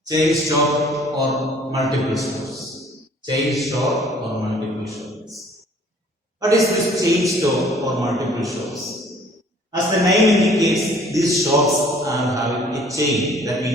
Chain store or multiple stores. Chain store or multiple shops. What is this chain store or multiple shops? As the name indicates, these shops are having a chain. That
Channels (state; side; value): normal; both; correlation 0.55